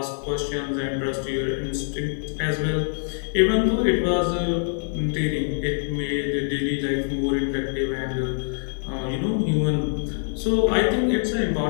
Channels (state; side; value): silent; right; digital silence